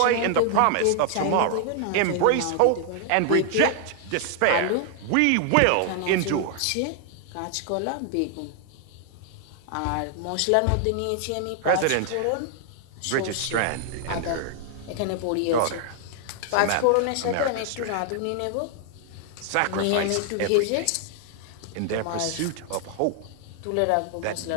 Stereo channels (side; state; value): both; different; correlation 0.00